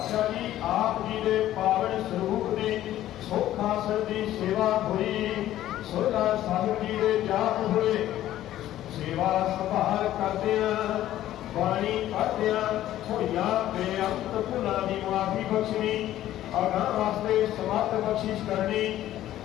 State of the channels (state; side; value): quieter; right; 13.3 dB